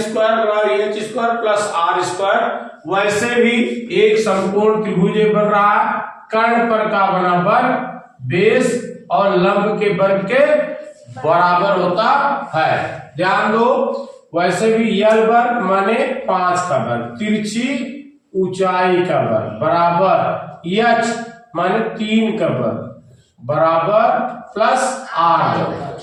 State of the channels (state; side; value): identical; both; correlation 1.00